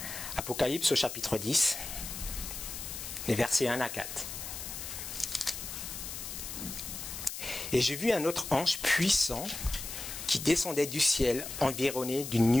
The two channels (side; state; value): left; noise; hiss, 8 dB below the sound